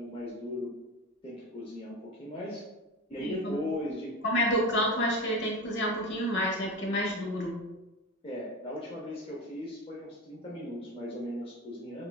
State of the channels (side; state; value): both; normal; correlation 0.25